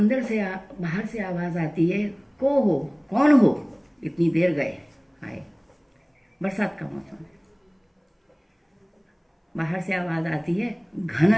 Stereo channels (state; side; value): identical; both; correlation 1.00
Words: से बाहर से आवाज आती है, को हो, कौन हो, इतनी देर गए आए। बरसात का मौसम है। बाहर से आवाज आती है,